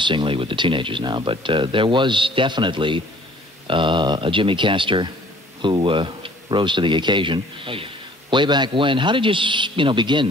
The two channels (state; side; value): normal; both; correlation 0.54